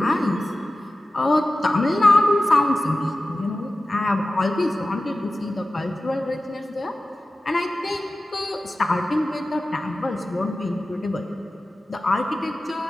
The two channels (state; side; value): normal; both; correlation 0.95